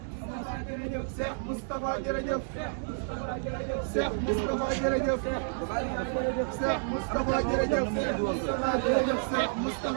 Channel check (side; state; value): left; silent; 58 dB below the other